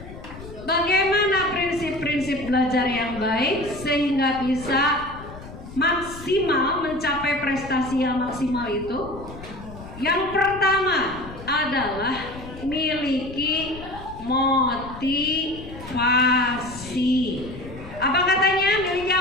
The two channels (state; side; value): noise; left; rumble, 14 dB below the sound